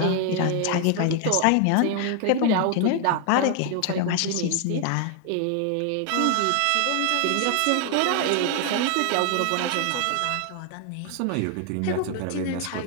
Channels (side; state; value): both; different; correlation 0.00